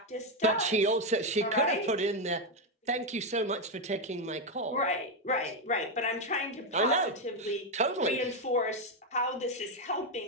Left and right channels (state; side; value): normal; both; correlation 0.05